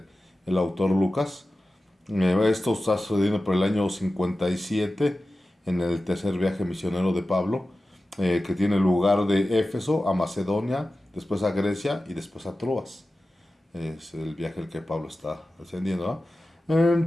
el autor Lucas. Esto está sucediendo por el año 57 en el tercer viaje misionero de Pablo, que tiene lugar de Éfeso a Macedonia, después a Grecia y después a Troas. Es el viaje el que Pablo está ascendiendo, ¿no?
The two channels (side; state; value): both; normal; correlation 0.95